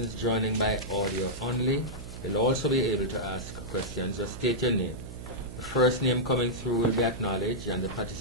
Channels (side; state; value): right; noise; hum, 11 dB below the sound